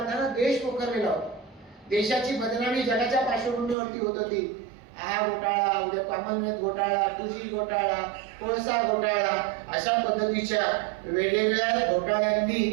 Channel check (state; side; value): drops out; left; at 3.8 s